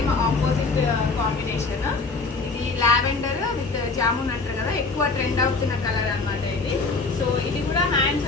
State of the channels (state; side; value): quieter; right; 3.9 dB